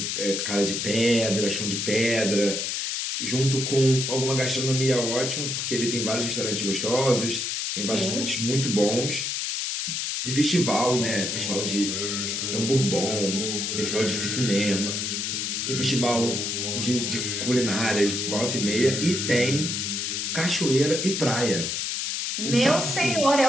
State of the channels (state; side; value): noise; left; hiss, 1 dB below the sound